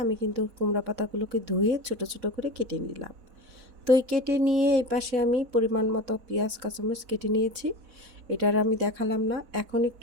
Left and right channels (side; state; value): left; late; 4.0 ms